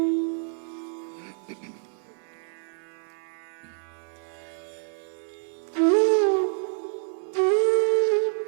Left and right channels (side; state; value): left; silent; 60 dB below the other